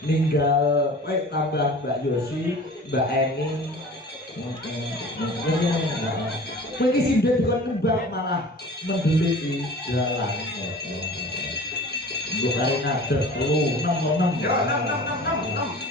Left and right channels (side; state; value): both; normal; correlation 0.41